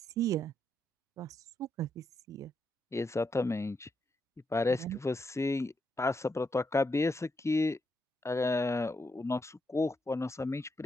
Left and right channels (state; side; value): normal; both; correlation 0.81